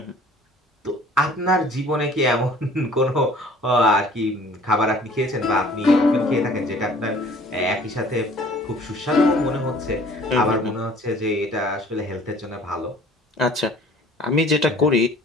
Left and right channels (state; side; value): normal; both; correlation 0.51